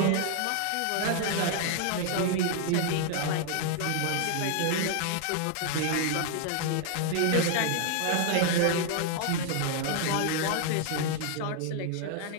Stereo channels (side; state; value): both; different; correlation 0.00